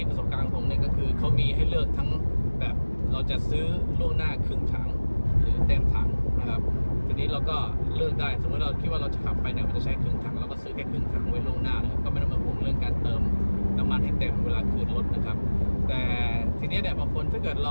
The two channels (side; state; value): both; inverted; correlation -1.00